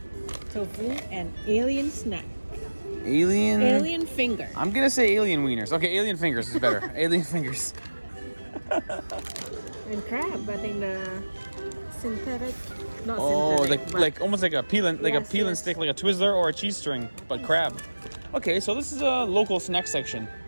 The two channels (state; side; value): inverted; both; correlation -1.00